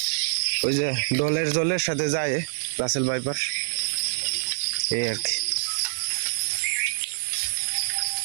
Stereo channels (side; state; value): left; silent; 61 dB below the other